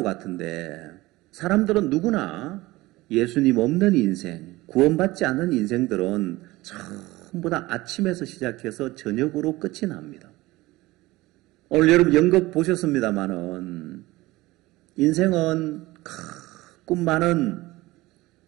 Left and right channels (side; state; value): left; quieter; 19.5 dB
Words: 같은데 사람들은 누구나 예수님 없는 인생, 구원받지 않은 인생들은 전부 다 아침에서 시작해서 저녁으로 끝이 납니다. 오늘 여러분 연극 보셨습니다마는 인생은 꿈 많은